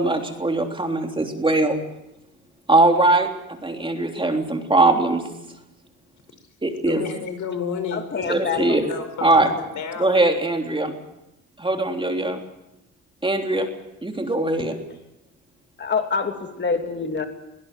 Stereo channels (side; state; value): both; normal; correlation 0.37